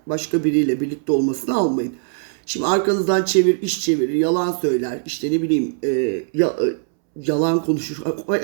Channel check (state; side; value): silent; left; 65 dB below the other